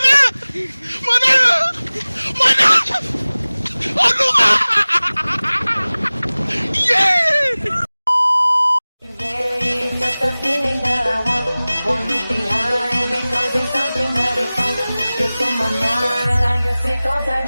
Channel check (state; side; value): inverted; both; correlation -0.99